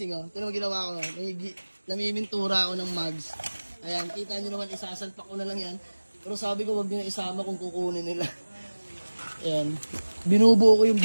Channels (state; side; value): inverted; both; correlation -1.00